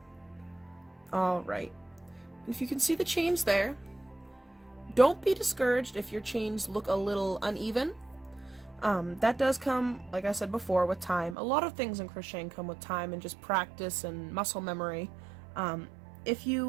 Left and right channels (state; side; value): drops out; left; at 11.4 s